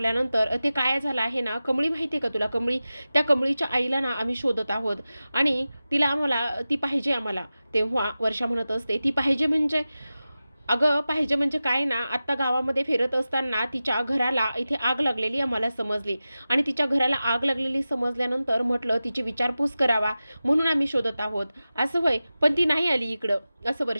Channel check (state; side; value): inverted; both; correlation -0.95